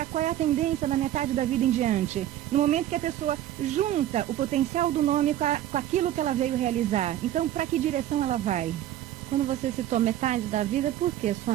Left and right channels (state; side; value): quieter; left; 12.5 dB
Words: qual é a tendência da metade da vida em diante. No momento que a pessoa junta o potencial do nome com aquilo que ela veio realizar. Então, para que direção ela vai? Quando você citou metade da vida, por quê,